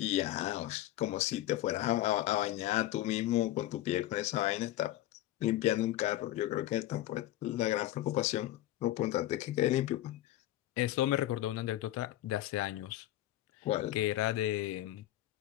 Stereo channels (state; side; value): quieter; right; 14.5 dB